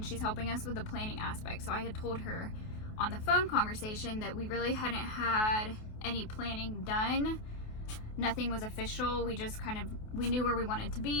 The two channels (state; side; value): late; right; 28 ms